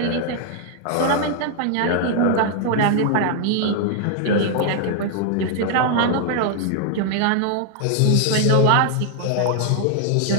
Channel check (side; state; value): both; different; correlation 0.00